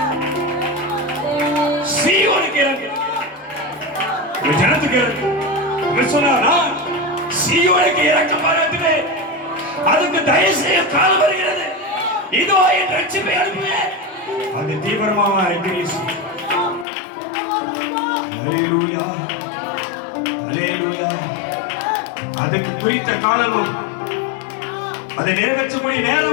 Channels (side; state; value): right; drops out; at 16.9 s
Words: சீயோனுக்கு இறங்கு, உன் ஜனத்துக்கு இறங்கு. சொன்னா சீயோனுக்கு இறக்க பாராட்டுவே, அதுக்கு தயவு செய்ய காலம் வருகிறது. இதோ என் ரட்சிப்பை அனுப்புவேன். அது தீவிரமாக அறிக்கை. அல்லேலூயா, அல்லேலூயா. அதுக்கு குறித்த காலமும் அதை நிறைவேற்றக்கூடிய